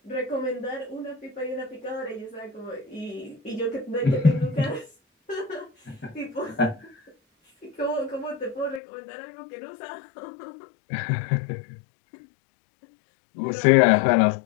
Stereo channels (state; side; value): drops out; right; at 8.8 s